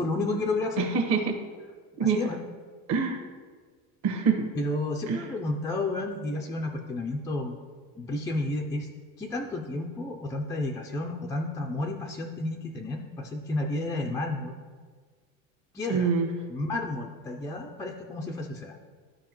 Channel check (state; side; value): normal; both; correlation 0.42